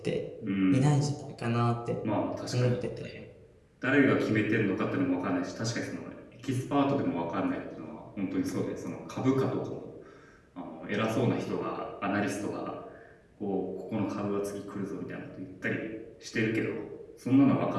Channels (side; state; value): both; identical; correlation 1.00